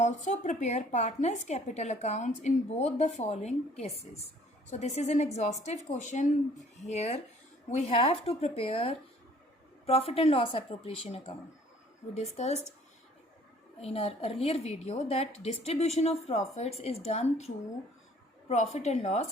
prepare partners' capital accounts in both the following cases. So this is an exhaustive question. Here we have to prepare profit and loss appropriation account. We discussed in our earlier video that distribution of profits is done through profit and loss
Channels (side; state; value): both; normal; correlation 0.56